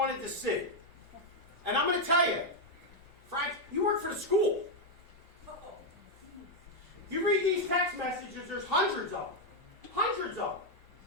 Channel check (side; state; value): both; normal; correlation 0.01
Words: to see. And I'm going to tell you, Frank, you work for the school. You read these text messages, there's hundreds of them. Hundreds of them.